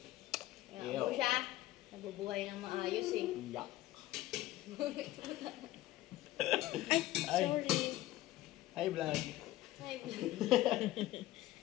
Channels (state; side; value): quieter; right; 16.0 dB